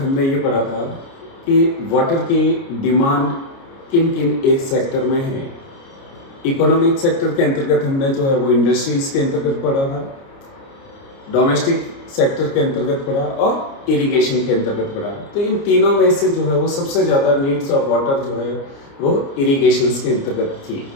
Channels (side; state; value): right; late; 29 ms